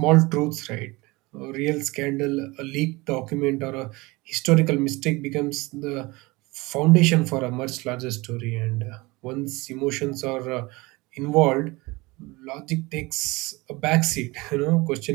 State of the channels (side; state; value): left; quieter; 23.1 dB